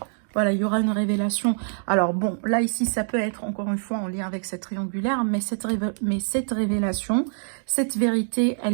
Voilà, il y aura une révélation. Alors bon, là ici, ça peut être encore une fois en lien avec cette triangulaire, mais cette révélation, cette vérité,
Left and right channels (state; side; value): silent; left; digital silence